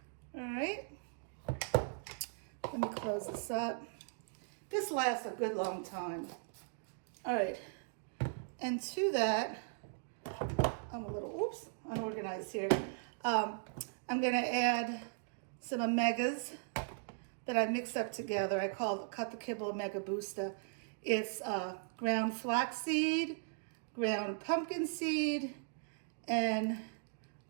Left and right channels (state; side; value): silent; left; digital silence